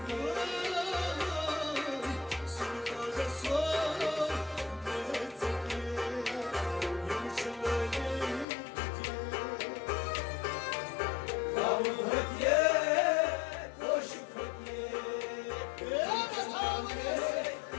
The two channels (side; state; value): right; drops out; at 8.5 s